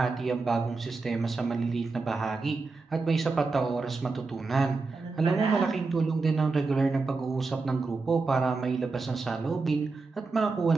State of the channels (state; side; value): quieter; left; 4.0 dB